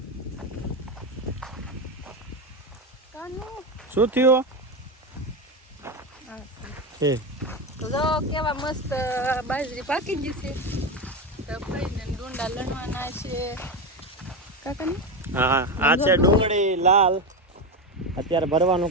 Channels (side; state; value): both; normal; correlation 0.15